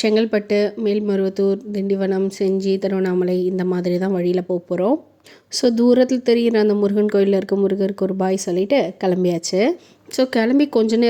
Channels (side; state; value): both; identical; correlation 1.00